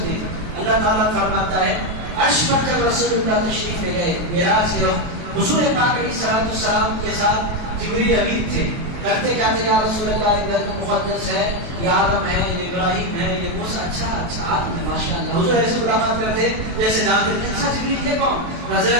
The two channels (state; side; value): late; left; 23 ms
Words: میں. اللہ تعالیٰ فرماتا ہے عرش پر جب رسول اللہ تشریف لے گئے معراج سے, حضور پاک علیہ الصلوۃ والسلام کے ساتھ جبریل امین تھے. کرتے کیا تھے؟ یا رسول اللہ یہ بیت مقدس ہے, یہ آدم ہے, یہ ابراہیم ہے, یہ موسیٰ. اچھا آدم ہے ماشاء اللہ. حضور ایسے ملاقات کرتے جیسے جانتے تھے. اچھا جبریل یہ کون؟